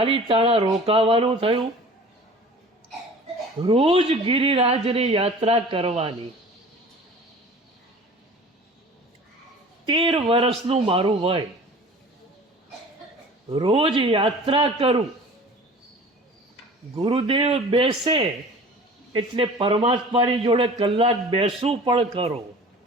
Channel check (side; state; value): both; normal; correlation 0.43